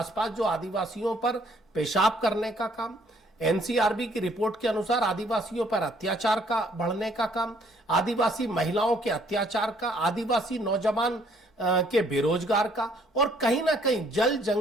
जो आदिवासियों पर पेशाब करने का काम, एनसीआरबी की रिपोर्ट के अनुसार आदिवासियों पर अत्याचार का बढ़ने का काम, आदिवासी महिलाओं के अत्याचार का, आदिवासी नौजवान के बेरोजगार का, और कहीं ना कहीं जल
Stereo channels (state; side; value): normal; both; correlation 0.64